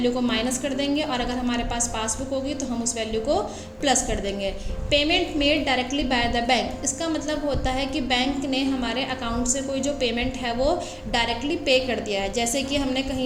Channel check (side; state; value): both; identical; correlation 1.00